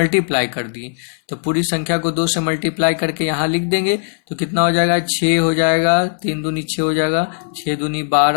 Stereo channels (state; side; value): silent; right; 63 dB below the other